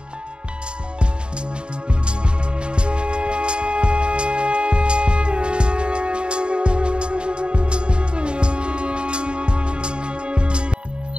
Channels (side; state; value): left; late; 0.052 ms